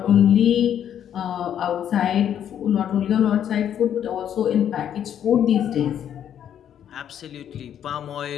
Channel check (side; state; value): right; quieter; 9.7 dB